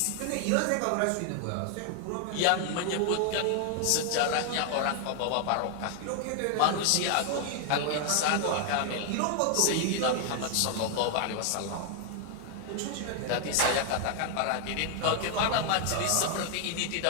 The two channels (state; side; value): different; both; correlation 0.00